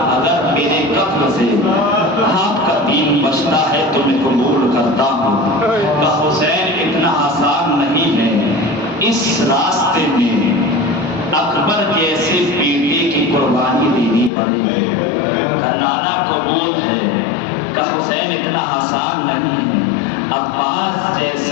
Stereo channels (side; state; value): right; drops out; at 14.3 s